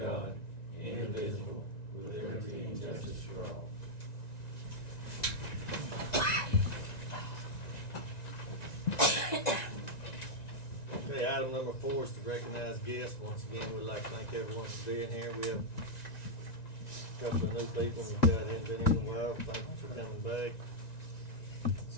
indivisible, with liberty and justice for all. Okay, item number 4 is to recognize guests. Once again, we'd like to thank everyone for being here. We have a couple of new people that hadn't been in a while. Thank you for coming back.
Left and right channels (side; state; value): right; late; 1.9 ms